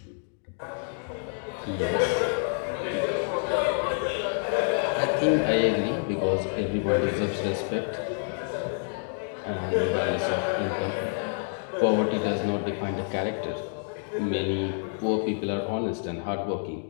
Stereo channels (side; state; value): right; silent; 59 dB below the other